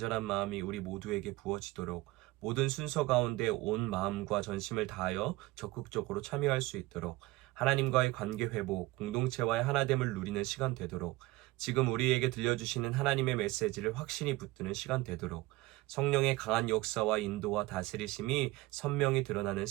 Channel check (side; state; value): left; quieter; 20.1 dB